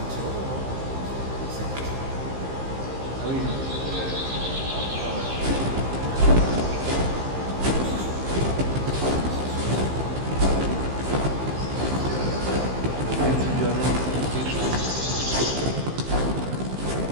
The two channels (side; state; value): left; late; 15 ms